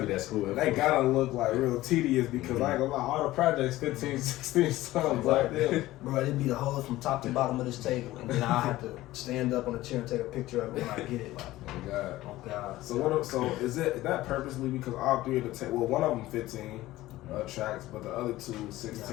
that school. That gotta look like real tedious because I ain't gonna lie, all the projects 15, 16 songs like that. Bro, it'd be the whole from top to bottom of this table, and then I have to stand up on the chair and take a picture of it when I get it. Like, Oh God. oh God. So is that purposely because all three of the well, one of them 15 tracks, but the other two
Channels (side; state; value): right; quieter; 16.7 dB